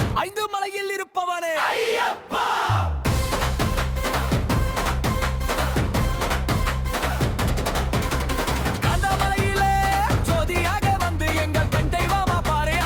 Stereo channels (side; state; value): both; identical; correlation 1.00